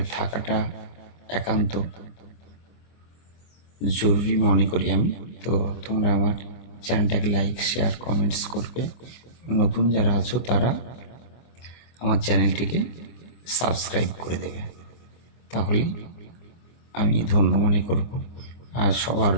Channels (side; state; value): right; late; 24 ms